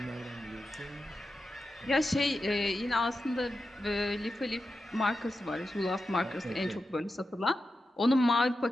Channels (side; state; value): both; normal; correlation 0.90